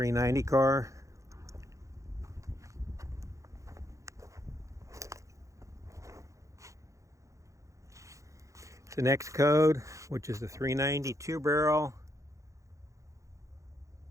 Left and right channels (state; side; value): late; left; 0.15 ms